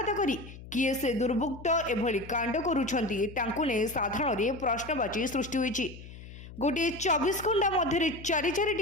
करी किए से दुर्बृत्त एभली कांड करुछंती तांकु ने साधारण प्रश्नवाची सृष्टि होईछि। गोटे 24 घंटा मध्य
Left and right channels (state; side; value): noise; left; hum, 15 dB below the sound